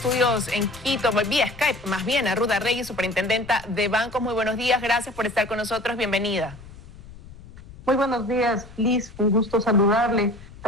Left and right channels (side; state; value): left; noise; rumble, 18 dB below the sound